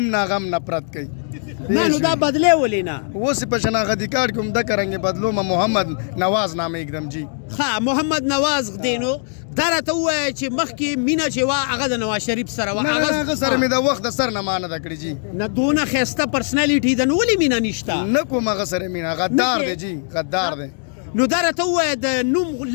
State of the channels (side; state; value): right; silent; 57 dB below the other